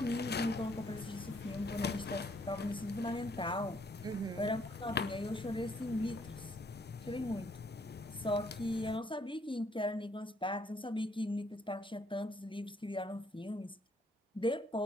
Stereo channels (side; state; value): both; normal; correlation 0.68